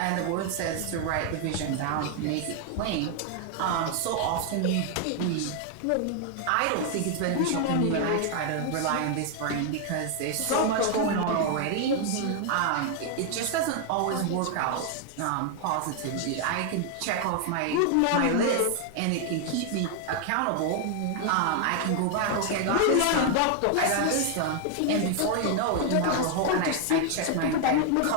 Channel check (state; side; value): different; both; correlation 0.00